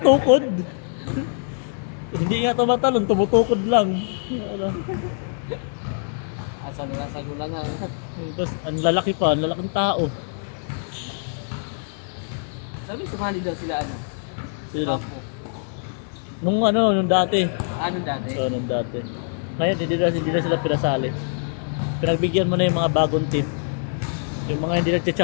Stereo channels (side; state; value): right; silent; digital silence